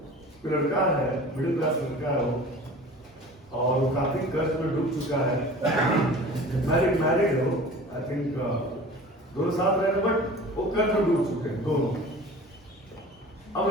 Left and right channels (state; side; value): normal; both; correlation 0.41